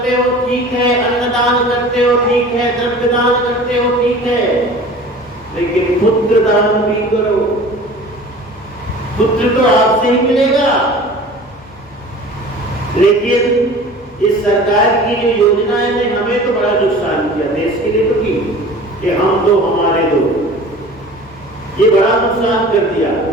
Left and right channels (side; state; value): left; noise; hum, 24 dB below the sound